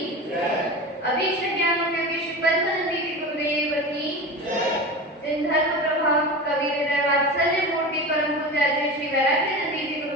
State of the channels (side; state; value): both; normal; correlation 0.28